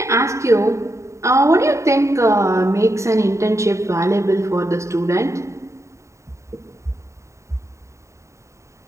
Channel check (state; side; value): late; left; 0.14 ms